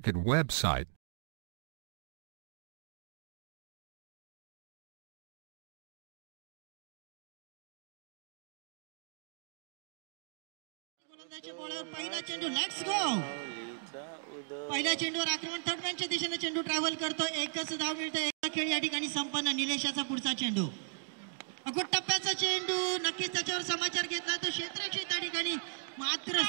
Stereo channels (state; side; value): silent; left; digital silence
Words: website. पहिला चेंडू, let's go. पहिल्या चेंडूवर आक्रमण थर्डमॅनच्या दिशेने चेंडू ट्रॅव्हल करतो. एकच धाव मिळते. एक खेळ या ठिकाणी संपन्न. निलेशाचा पुढचा चेंडू, अगोदर टप्प्याचा चेंडू, नक्कीच त्याच्यावर समाचार घेतला तो क्षेत्ररक्षक त्या ठिकाणी मात्र